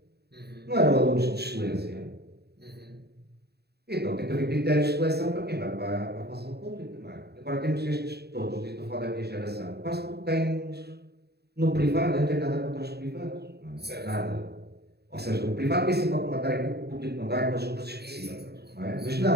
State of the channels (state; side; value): late; left; 0.47 ms